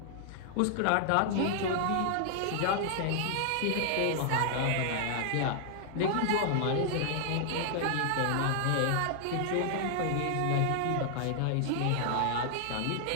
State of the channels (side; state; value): both; different; correlation 0.00